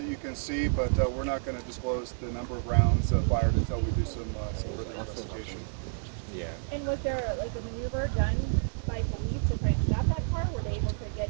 you can see, but we're not going to disclose the number of rounds fired until we do some further investigation. Yeah. And was there like a maneuver done by police to try and stop that car? Were they able to get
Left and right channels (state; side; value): silent; left; digital silence